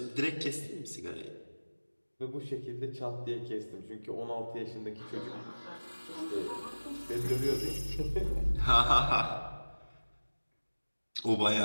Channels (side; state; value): both; inverted; correlation -1.00